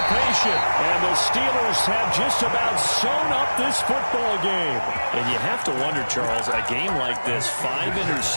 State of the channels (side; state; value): both; inverted; correlation -1.00